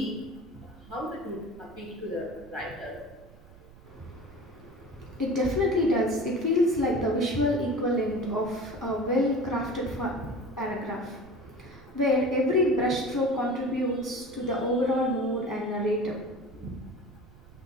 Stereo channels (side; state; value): right; noise; rumble, 22 dB below the sound